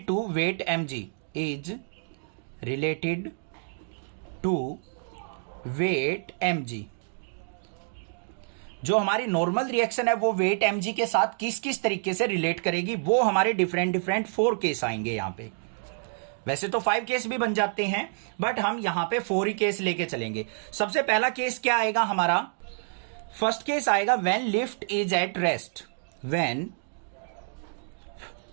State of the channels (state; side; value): silent; left; digital silence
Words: to weight mg, is related to weight mg। जो हमारी नॉर्मल रिएक्शन है वो वेट mg के साथ किस किस तरीके से रिलेट करेगी, वो हमारे डिफरेंट 4 केस आएंगे यहां पे। वैसे तो 5 केस भी बन जाते हैं, बट हम यहां पे 4 ही केस लेके चलेंगे। सबसे पहला केस क्या आएगा हमारा, फर्स्ट केस आएगा when lift is at rest. When